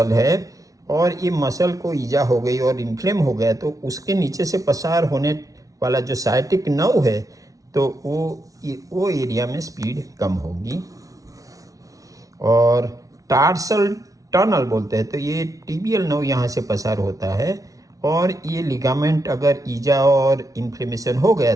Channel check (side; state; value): left; late; 0.17 ms